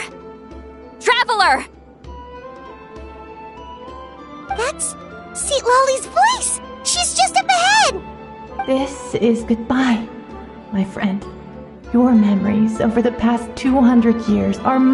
Traveler! That's Seatlali's voice! She's just up ahead! This is goodbye, my friend. Your memories over the past 200 years are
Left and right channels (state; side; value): identical; both; correlation 1.00